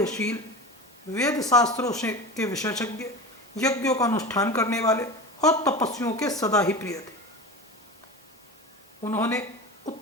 वेद शास्त्रों से के विशेषज्ञ, यज्ञों का अनुष्ठान करने वाले और तपस्वियों के सदा ही प्रिय थे। उन्होंने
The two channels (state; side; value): normal; both; correlation 0.29